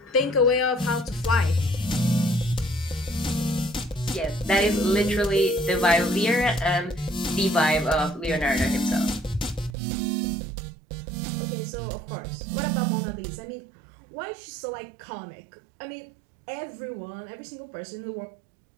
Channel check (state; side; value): drops out; left; at 9.8 s